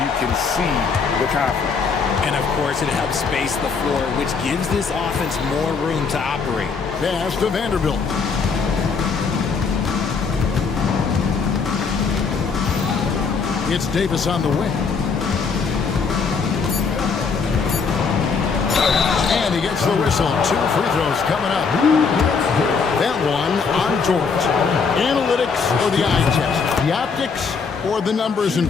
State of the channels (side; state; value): right; quieter; 5.3 dB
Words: can see the confidence. And of course, it helps space the floor, which gives this offense more room to operate. Pass to Vanderbilt. It's Davis on the wing. And he gets the whistle. 2 free throws coming up. That one on George. Analytics or the eye test? The optics or the numbers in